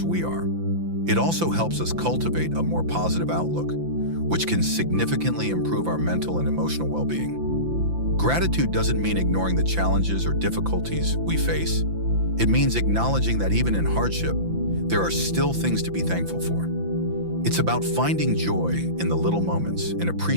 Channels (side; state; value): left; late; 5.9 ms